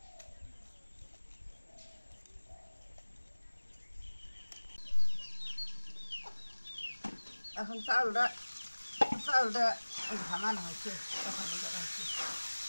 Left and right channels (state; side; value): inverted; both; correlation -1.00